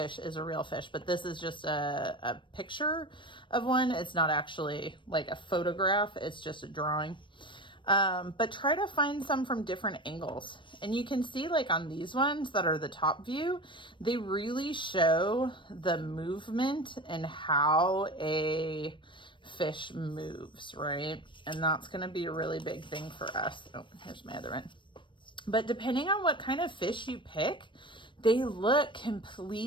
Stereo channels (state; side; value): late; right; 0.24 ms